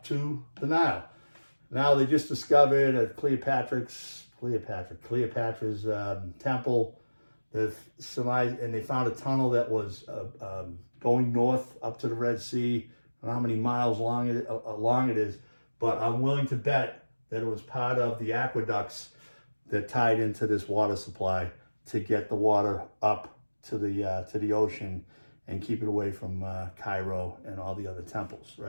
to the Nile. Now they just discovered at Cleopatra's temple. And they found a tunnel that was going north up to the Red Sea. I don't know how many miles long it is, but I'm willing to bet that it was part of the aqueducts that tied into this water supply to get the water up to the ocean and keep it away from Cairo and all the other temples,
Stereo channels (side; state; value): both; inverted; correlation -1.00